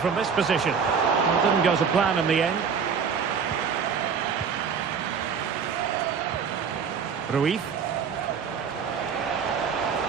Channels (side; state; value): left; quieter; 6.4 dB